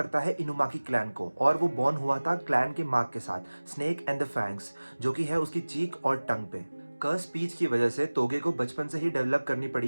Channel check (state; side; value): inverted; both; correlation -1.00